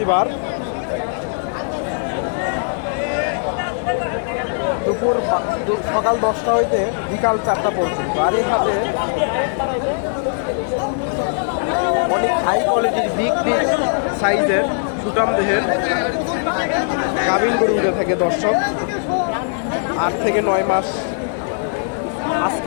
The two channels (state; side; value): silent; right; digital silence